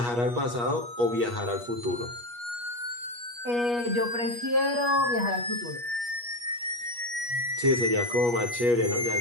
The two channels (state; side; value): late; left; 8.3 ms